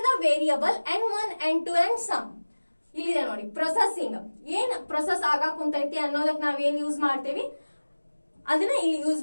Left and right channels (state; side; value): inverted; both; correlation -1.00